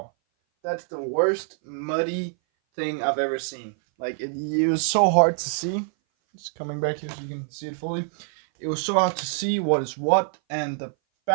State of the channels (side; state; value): left; silent; 58 dB below the other